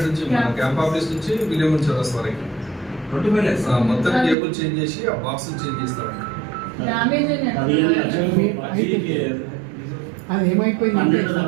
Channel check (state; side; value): drops out; left; at 4.4 s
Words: నుంచి మన క్యాంప్ ఆఫీస్ నుంచి విలియం చౌరస్తా వరకు మొత్తం కేబుల్ చేంజ్ చేసి ఆ బాక్స్ చేంజ్ చేస్తారంట. అది ఏమైపోయింది